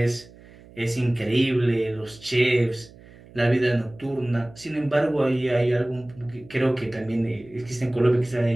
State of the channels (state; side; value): noise; right; hum, 22 dB below the sound